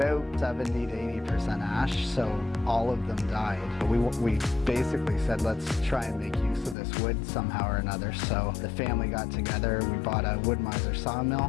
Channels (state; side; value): drops out; right; at 6.8 s